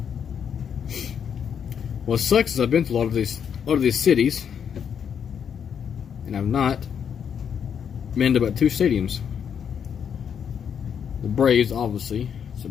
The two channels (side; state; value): right; quieter; 7.8 dB